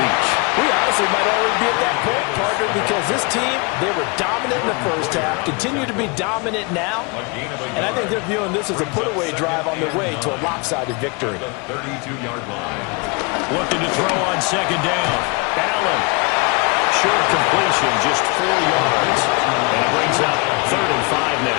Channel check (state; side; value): quieter; right; 30.2 dB